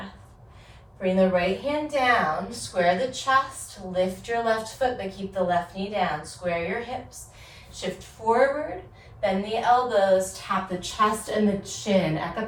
Bring the right hand down, square the chest, lift your left foot, but keep the left knee down. Square your hips, shift forward, bend the elbows, tap the chest and the chin.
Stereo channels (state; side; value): identical; both; correlation 1.00